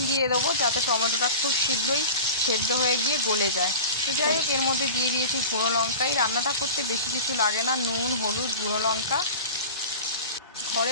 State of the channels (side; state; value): both; inverted; correlation -0.34